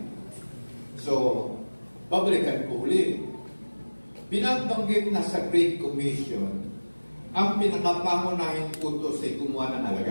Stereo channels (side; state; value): both; inverted; correlation -1.00